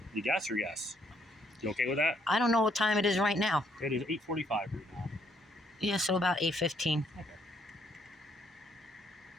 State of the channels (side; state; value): both; normal; correlation 0.69